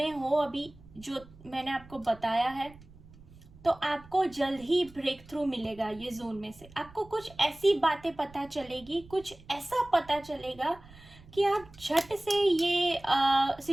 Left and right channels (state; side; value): noise; right; rumble, 22 dB below the sound